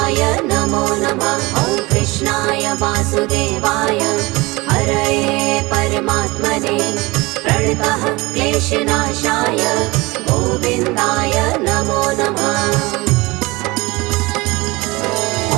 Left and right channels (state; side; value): quieter; left; 22.9 dB